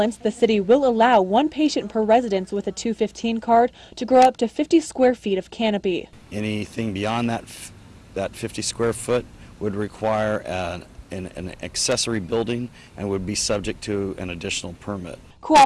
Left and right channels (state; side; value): identical; both; correlation 1.00